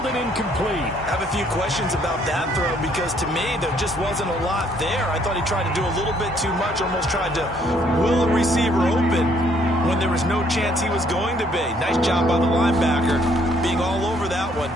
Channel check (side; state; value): both; normal; correlation 0.66